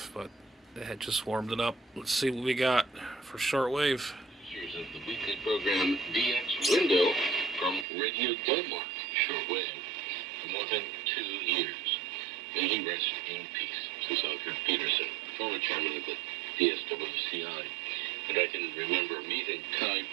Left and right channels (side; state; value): left; drops out; at 7.9 s